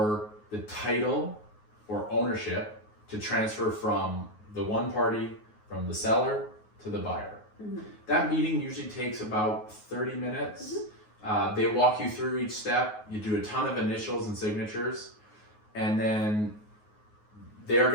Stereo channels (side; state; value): right; late; 9.5 ms